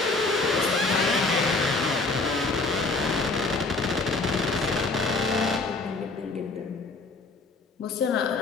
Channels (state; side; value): quieter; right; 3.5 dB